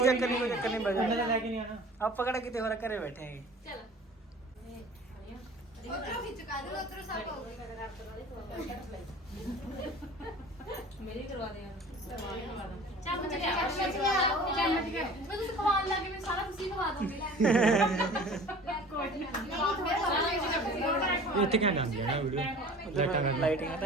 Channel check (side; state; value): both; normal; correlation 0.43